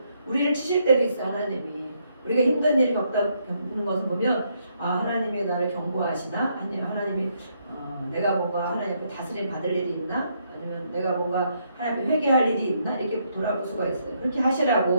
우리를 치실 때도 있어 하나님이. 우리가 힘든 일이 겪는 것을 보면 하나님이 나를 경고하시나? 아니면 하나님이 내가 뭔가 하나님 앞에 다스림 받을 일이 있나? 아니면 내가 뭔가 하나님 앞에 회개할 일이 있나? 이렇게 돌아볼 수가 있어요. 그렇게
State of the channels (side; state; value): both; inverted; correlation -0.74